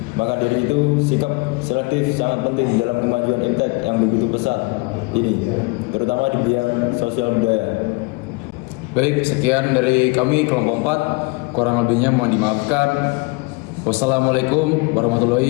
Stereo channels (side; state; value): right; quieter; 27.3 dB